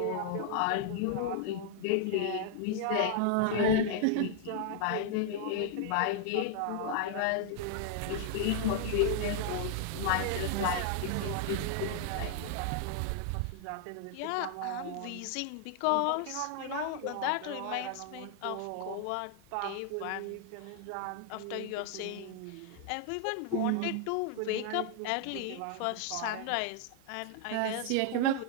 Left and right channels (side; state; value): both; different; correlation 0.00